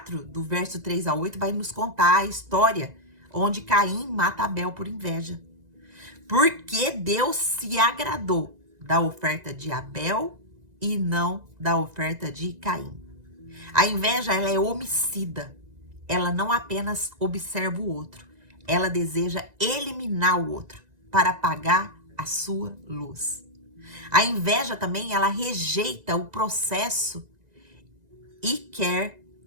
do verso 3 a 8, vai nos contar a história onde Caim mata Abel por inveja. Porque Deus se agradou da oferta de Abel e não da oferta de Caim. A inveja, ela é homicida. Ela não apenas observa o outro, ela deseja eliminar o outro para apagar a sua luz. A inveja também, ela rejeita o processo e quer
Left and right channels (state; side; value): late; left; 2.0 ms